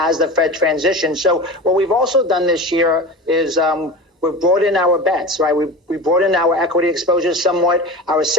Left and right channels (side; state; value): both; normal; correlation 0.30